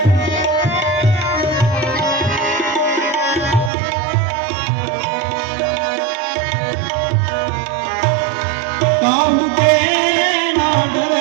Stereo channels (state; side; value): drops out; left; at 3.7 s